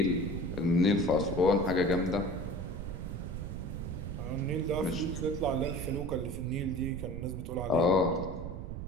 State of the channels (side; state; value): right; noise; rumble, 7 dB below the sound